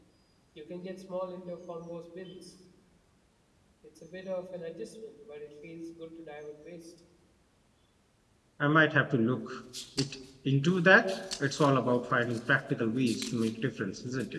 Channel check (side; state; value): both; identical; correlation 1.00